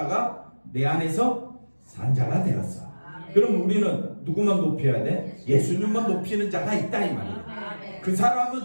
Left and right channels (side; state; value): both; inverted; correlation -1.00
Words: 내 안에서 산자가 되었어. 그럼 우리는 누구만 높여야 돼? 예수님만 높이는 자가 있다 이 말이에요. 그